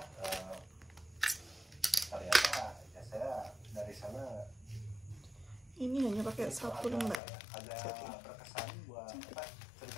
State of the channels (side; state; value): right; drops out; at 7.2 s